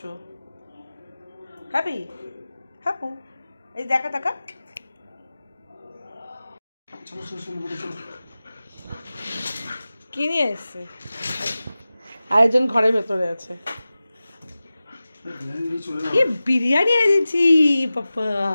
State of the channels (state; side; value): inverted; both; correlation -0.96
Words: হ্যাপি হ্যাপু এই দেখা দেখা কি নিয়ে এসছে? আরেকজন ঘরের ভেতরে আছে। কি বিরিয়ানি এনেছি পাপা,